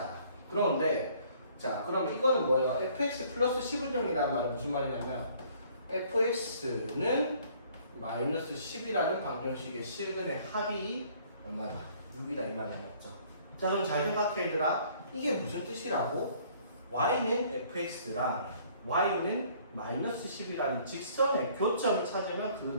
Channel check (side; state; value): both; inverted; correlation -0.58